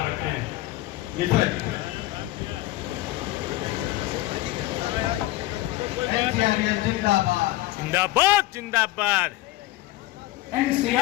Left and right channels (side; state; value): right; quieter; 17.1 dB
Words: रखें। मिश्रा जी। NCRS जिंदाबाद। जिंदाबाद, जिंदाबाद.